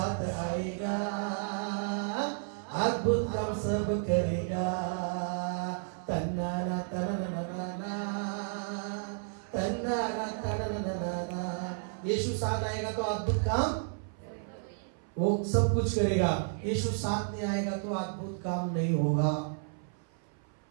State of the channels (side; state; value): left; silent; 56 dB below the other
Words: आएगा, अद्भुत काम सब करेगा. तन्नाना तन्नाना तन्नाना तन्नाना. यीशु साथ आएगा तो अद्भुत काम वो सब कुछ करेगा. यीशु साथ नहीं आएगा तो अद्भुत काम नहीं होगा.